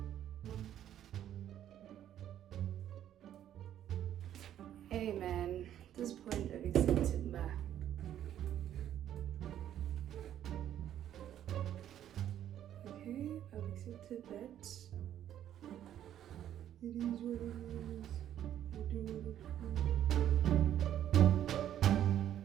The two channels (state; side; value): quieter; left; 11.0 dB